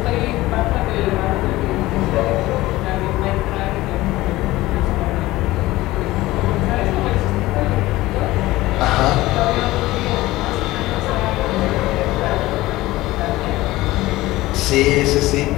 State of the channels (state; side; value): quieter; right; 18.0 dB